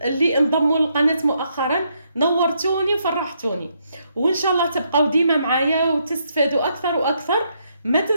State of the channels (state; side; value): inverted; both; correlation -0.76